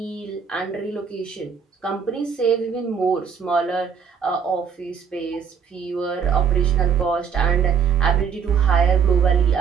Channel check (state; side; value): quieter; left; 6.7 dB